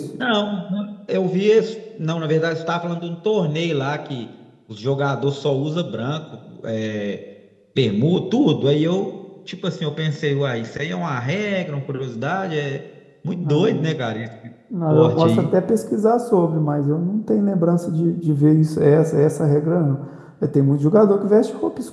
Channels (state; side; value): identical; both; correlation 1.00